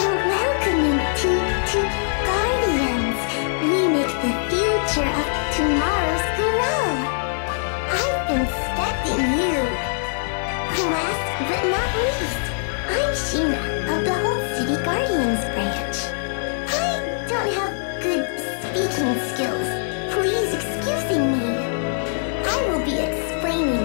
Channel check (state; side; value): silent; right; digital silence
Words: Welcoming to Guardians. We make the future of tomorrow's grow. I've been expecting you. Last but not least, I'm Sheena of the Whole City Guardians branch. I don't have good speaking skills. Please excuse me. I will be